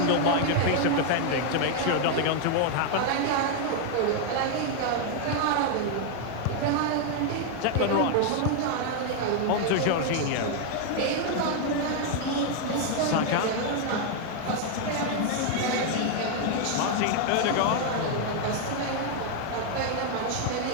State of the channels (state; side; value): different; both; correlation 0.01